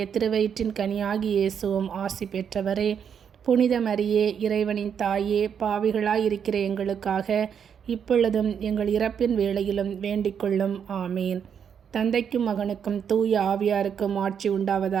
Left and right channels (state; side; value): quieter; left; 7.7 dB